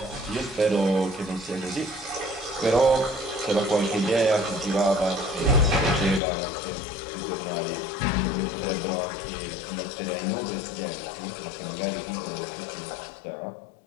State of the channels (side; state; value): right; drops out; at 6.2 s